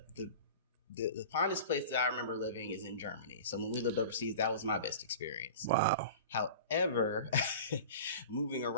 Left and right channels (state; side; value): inverted; both; correlation -0.37